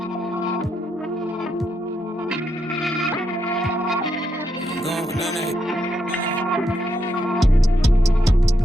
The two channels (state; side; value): normal; both; correlation 0.80